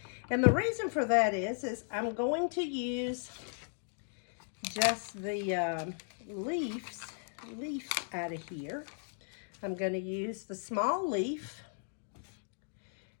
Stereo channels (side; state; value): right; silent; digital silence